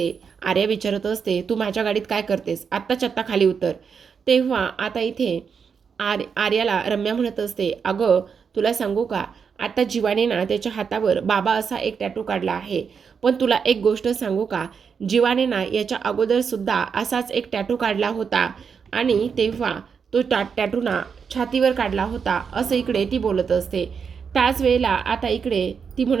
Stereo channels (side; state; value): left; quieter; 6.3 dB